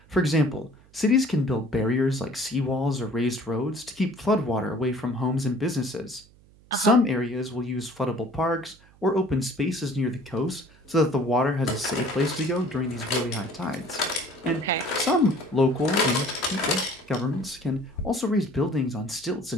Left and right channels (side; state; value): right; noise; hum, 27 dB below the sound